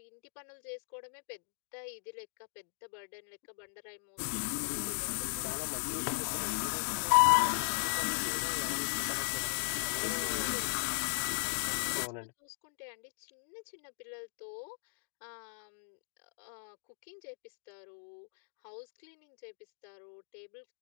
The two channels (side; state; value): right; silent; digital silence